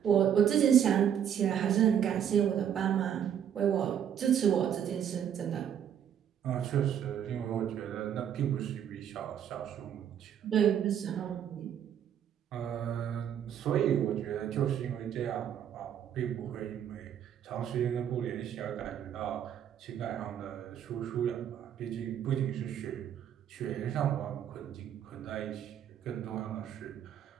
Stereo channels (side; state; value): left; quieter; 9.2 dB